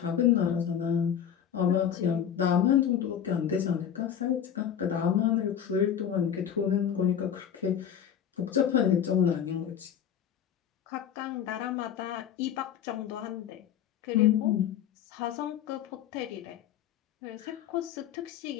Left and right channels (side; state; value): right; quieter; 9.0 dB